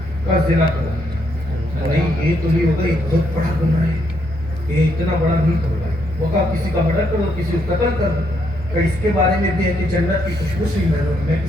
کا زنا کرو. نہیں یہ تو نہیں ہوگا, یہ بہت بڑا گناہ ہے, یہ اتنا بڑا نہیں ہوگا. وہ کہا کسی کا مرڈر کرو, کسی کو قتل کر دو. کہ اس کے بارے میں بھی ہے کہ جنت کی خوشبو سے میں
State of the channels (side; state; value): both; normal; correlation 0.75